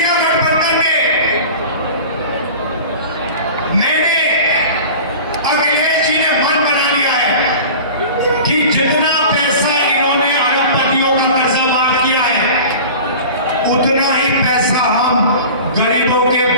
गठबंधन में। मैंने अखिलेश जी ने मन बना लिया है कि जितना पैसा इन्होंने अरबपतियों का कर्जा माफ किया है, उतना ही पैसा हम गरीबों के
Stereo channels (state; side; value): inverted; both; correlation -0.37